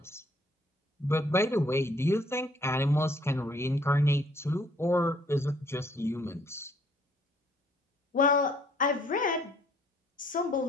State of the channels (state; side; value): normal; both; correlation 0.62